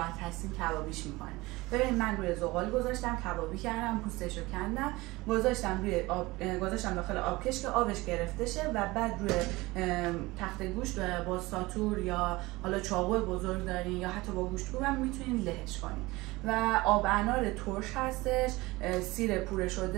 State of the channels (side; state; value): left; quieter; 21.1 dB